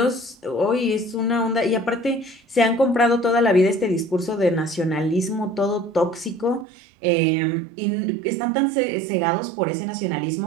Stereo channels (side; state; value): left; drops out; at 6.7 s